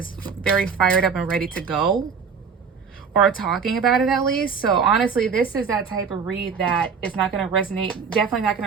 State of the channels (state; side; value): quieter; left; 5.9 dB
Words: very fired up and ready to go, or talking about it at least. So honestly, this is that type of read that is not going to resonate, definitely not